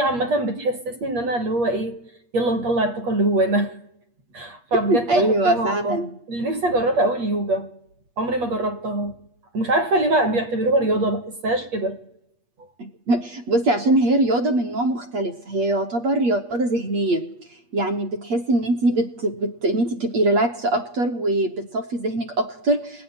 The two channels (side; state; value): left; late; 8.4 ms